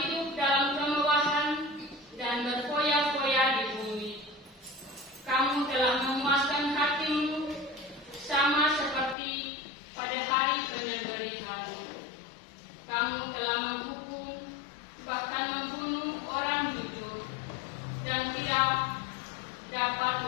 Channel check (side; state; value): right; drops out; at 9.2 s